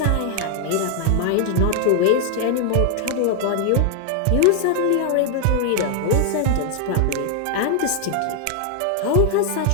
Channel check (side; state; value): both; different; correlation 0.00